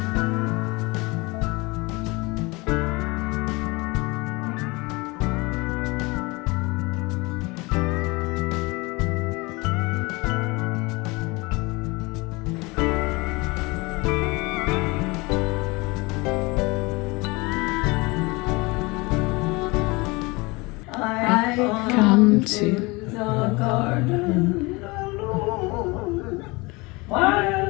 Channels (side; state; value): right; quieter; 24.9 dB